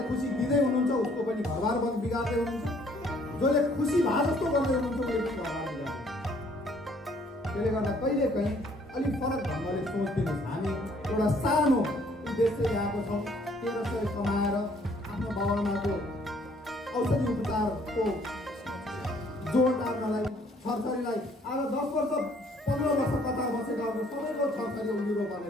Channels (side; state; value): both; normal; correlation 0.62